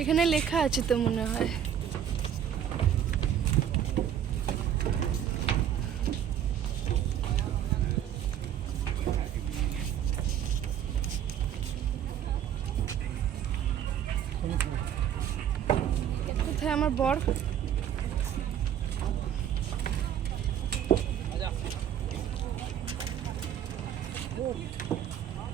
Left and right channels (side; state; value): left; quieter; 9.6 dB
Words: লেখা আছে তো মনে হয়। কোথায় আমার বর?